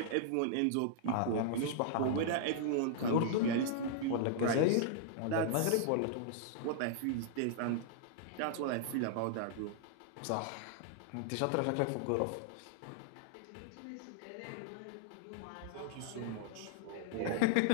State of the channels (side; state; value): both; different; correlation -0.01